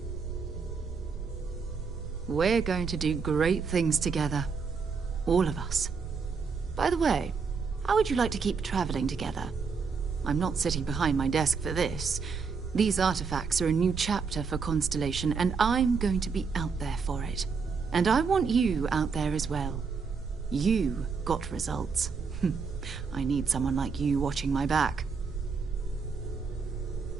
We're going to do great things together. All of us. By the way, how would you like to keep traveling together? I'm not sitting behind my desk for this. These artifacts are a new chapter for Constellation, and I'm going to be out there for it. And I want you out there as well. You got results. I need someone like you watching my back.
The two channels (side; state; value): left; quieter; 5.3 dB